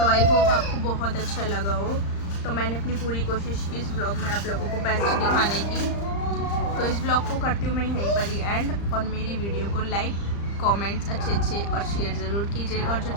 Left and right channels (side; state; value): right; late; 35 ms